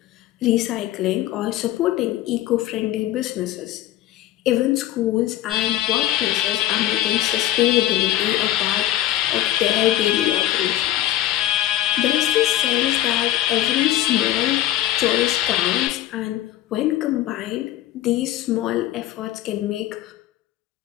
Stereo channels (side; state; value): right; quieter; 13.6 dB